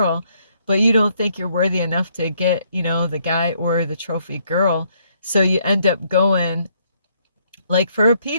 but you don't think you're worthy enough to get, the guy or the trophy girl. So you end up going, like, for a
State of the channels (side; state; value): both; inverted; correlation -0.70